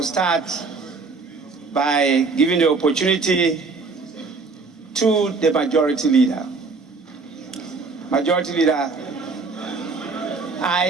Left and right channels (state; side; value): quieter; left; 4.2 dB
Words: start by giving the opportunity to the Majority Leader. Majority Leader,